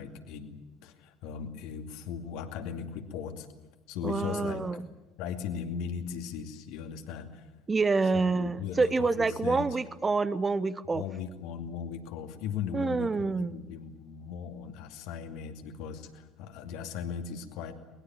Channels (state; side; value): normal; both; correlation 0.76